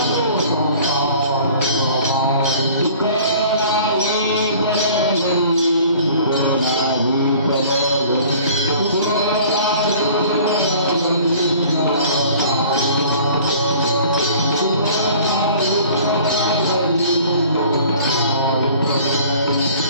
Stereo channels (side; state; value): both; inverted; correlation -0.50